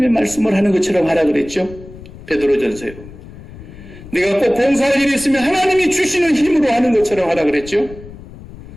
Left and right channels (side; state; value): left; noise; rumble, 17 dB below the sound